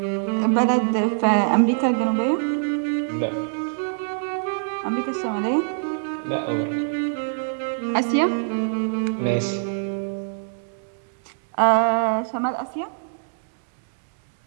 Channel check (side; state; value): left; silent; digital silence